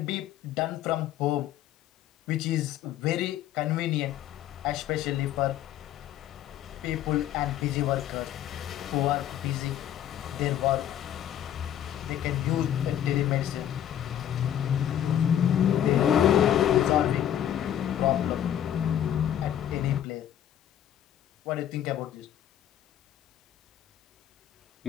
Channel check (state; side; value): quieter; right; 10.8 dB